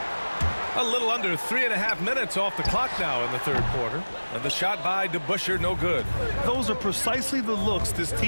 A little under 3.5 minutes off the clock now in the 3rd quarter. And the shot by DeBusschere no good. Those are precisely the looks this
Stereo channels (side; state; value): both; inverted; correlation -1.00